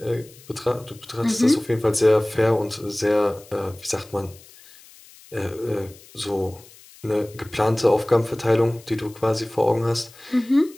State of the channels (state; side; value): noise; left; hiss, 23 dB below the sound